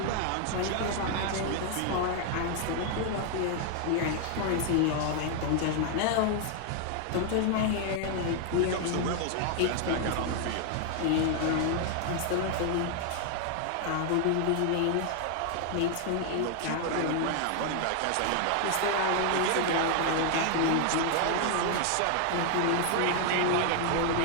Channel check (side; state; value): both; different; correlation 0.00